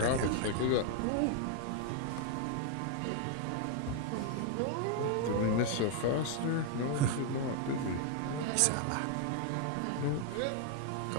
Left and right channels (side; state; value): both; different; correlation 0.00